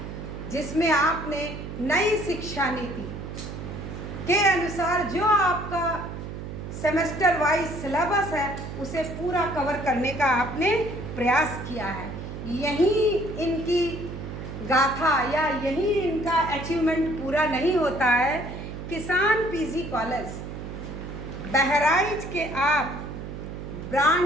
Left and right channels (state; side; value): noise; right; hum, 8 dB below the sound